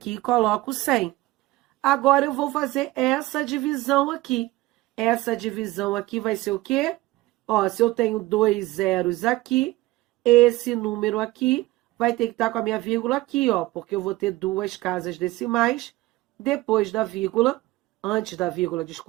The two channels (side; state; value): left; quieter; 18.6 dB